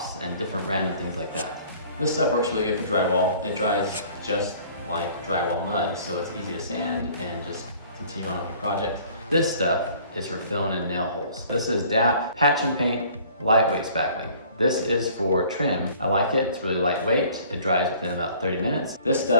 and different random things like that. This stuff works really good for drywall. It dries just like drywall mud, so it's easy to sand and just continue on with your project. This stuff is for filling in nail holes. This is DAP Patch and Paint Lightweight Spackling. This is for trim. I like it, it's really lightweight. It dries within about 30 minutes. This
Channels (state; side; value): inverted; both; correlation -0.52